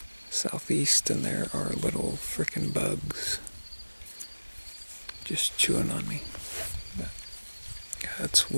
southeast, and there are little frickin' bugs just chewing on me. But yeah, it's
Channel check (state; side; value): inverted; both; correlation -1.00